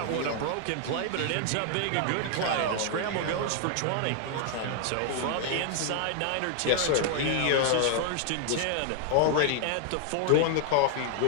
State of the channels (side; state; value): both; different; correlation 0.00